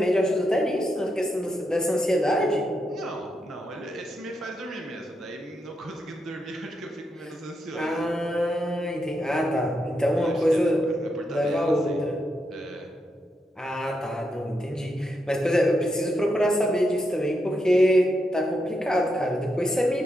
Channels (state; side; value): normal; both; correlation 0.83